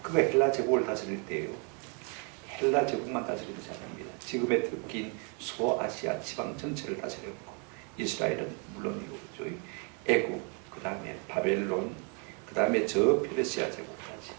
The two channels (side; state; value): left; quieter; 36.7 dB